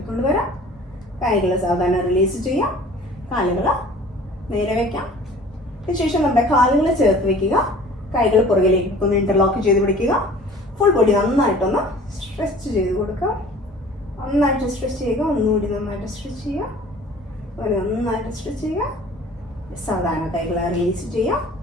വരാം. കൈകൾ സാധാരണ റിലീസ് ചെയ്യാം. കാലുകൾ നേരെ വയ്ക്കാം. അതിനുശേഷം നമ്മുടെ കാലുകൾ ചേർത്ത് വയ്ക്കുക. കൈകൾ പുറകിലേക്ക് ഒന്ന് ഇന്റർലോക്ക് ചെയ്ത് പിടിക്കുക. ഫുൾ ബോഡി നന്നായിട്ടൊന്ന് സ്ട്രെച്ച് ചെയ്ത് കൊടുക്കുക. നന്നായിട്ട് സ്ട്രെച്ച് ചെയ്യുക. ഒന്നുകൂടി നന്നായിട്ട് സ്ട്രെച്ച് ചെയ്യുക. നന്നായിട്ട് സ്ട്രെച്ച് ചെയ്യുക. സാധാരണ കൈകളെ റിലീസ് ചെയ്യാം.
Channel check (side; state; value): both; normal; correlation 0.47